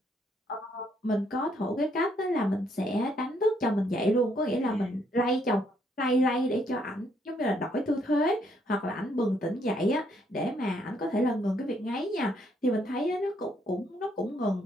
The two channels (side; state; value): both; normal; correlation 0.71